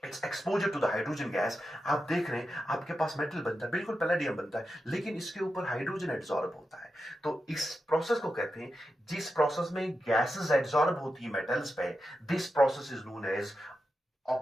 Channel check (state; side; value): normal; both; correlation 0.89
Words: its exposure to the hydrogen gas, आप देख रहे हैं आपके पास मेटल बनता है, बिल्कुल पैलेडियम बनता है, लेकिन इसके ऊपर हाइड्रोजन एड्सॉर्ब होता है। तो इस प्रोसेस को कहते हैं, जिस प्रोसेस में गैसेस एड्सॉर्ब होती है मेटल्स पे, this process is known as